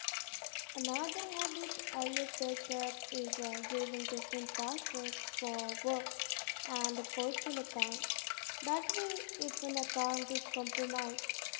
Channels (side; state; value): right; silent; digital silence